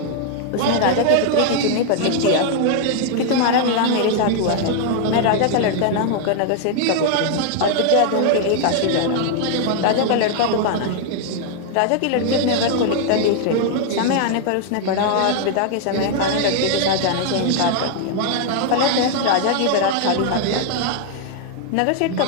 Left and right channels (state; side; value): different; both; correlation 0.00